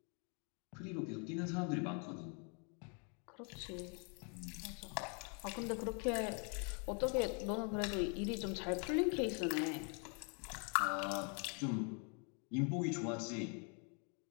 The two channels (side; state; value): right; quieter; 37.5 dB